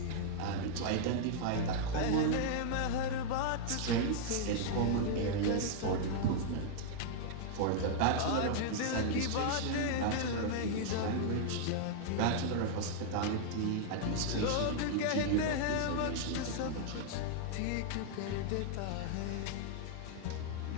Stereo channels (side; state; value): both; different; correlation -0.01